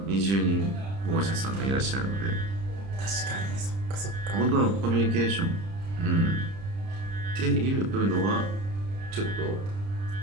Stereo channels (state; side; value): late; left; 30 ms